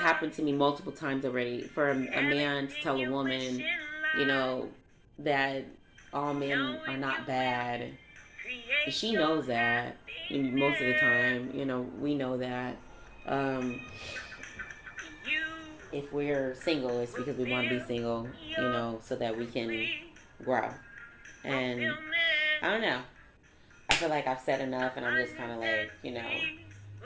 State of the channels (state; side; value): identical; both; correlation 1.00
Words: to me multiple times already, for a man to tell a woman, that all men are not bad. She knows that most of the time, we know that. If we're single, it's because we want to be single, so that we can grow. And I don't know. I feel like I've said enough and I'm just kind of like,